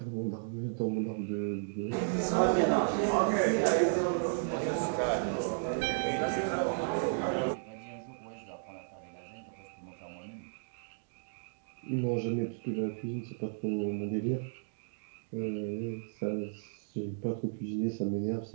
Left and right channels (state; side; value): silent; left; digital silence